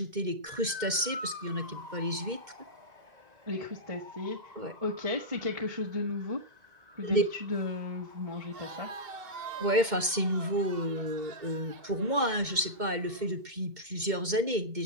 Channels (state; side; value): late; left; 2.2 ms